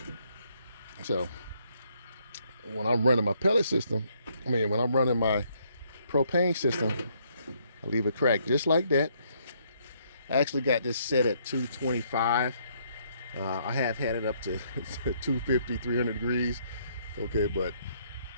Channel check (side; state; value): both; inverted; correlation -0.70